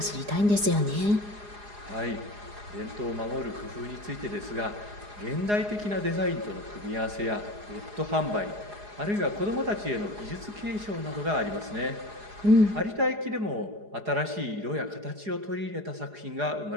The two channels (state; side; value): late; left; 4.8 ms